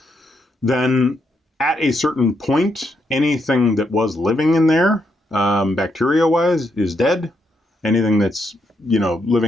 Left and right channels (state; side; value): normal; both; correlation 0.78